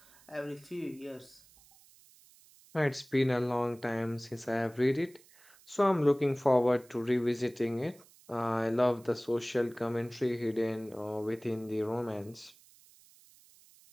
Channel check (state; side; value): noise; right; hiss, 26 dB below the sound